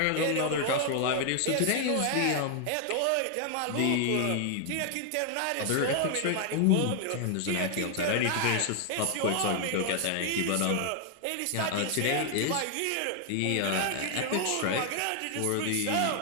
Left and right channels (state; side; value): different; both; correlation 0.00